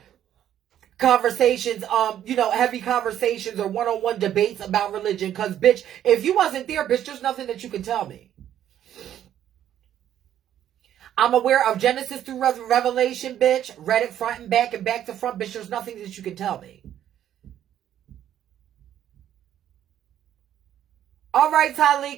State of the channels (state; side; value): quieter; left; 10.9 dB